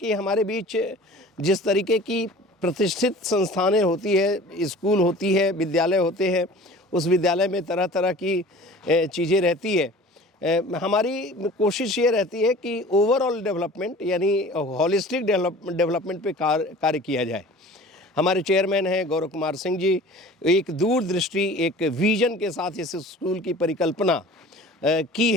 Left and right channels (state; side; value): normal; both; correlation 0.43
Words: हमारे बीच जिस तरीके की प्रतिष्ठित संस्थानें होती है, स्कूल होती है, विद्यालय होते हैं, उस विद्यालय में तरह तरह की चीज़ें रहती है। हमारी कोशिश ये रहती है कि ओवरऑल डेवलपमेंट यानी हॉलिस्टिक डेवलपमेंट पे कार्य किया जाए। हमारे चेयरमैन हैं गौरव कुमार सिंह जी, एक दूरदृष्टि, एक विजन के साथ इस स्कूल की परिकल्पना की